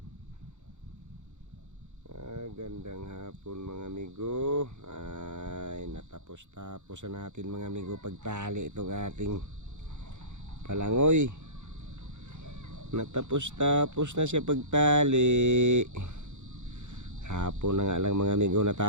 Gandang hapon mga amigo. Ay, natapos-tapos na natin mga amigo pagtali itong ating palangoy. Natapos-tapos na siya pagtali. Hapon na nga lang mga amigo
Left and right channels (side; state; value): left; late; 0.84 ms